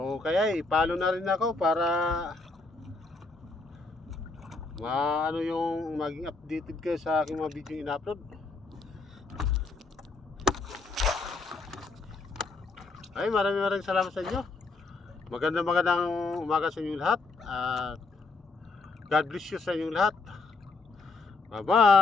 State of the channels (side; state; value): right; quieter; 3.8 dB